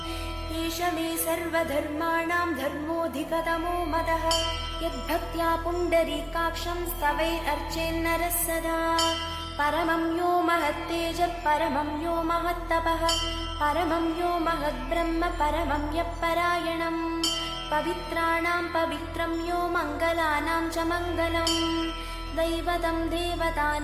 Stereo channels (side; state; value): both; identical; correlation 1.00